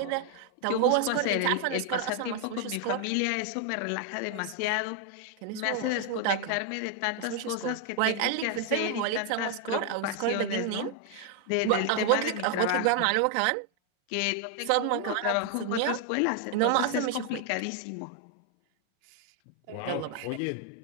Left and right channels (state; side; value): different; both; correlation 0.00